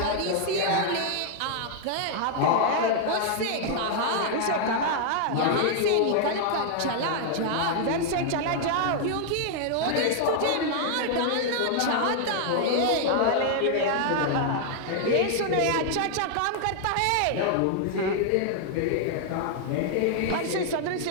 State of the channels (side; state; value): both; different; correlation 0.00